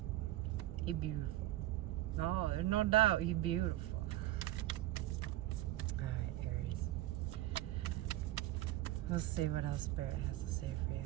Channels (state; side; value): quieter; left; 15.6 dB